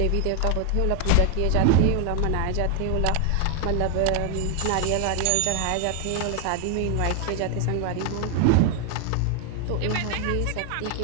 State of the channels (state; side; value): different; both; correlation 0.00